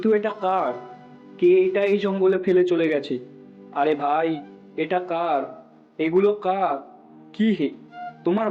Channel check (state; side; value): identical; both; correlation 1.00